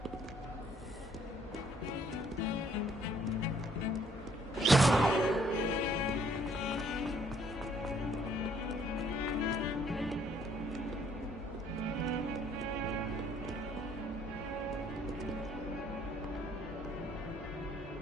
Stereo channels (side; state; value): both; normal; correlation 0.64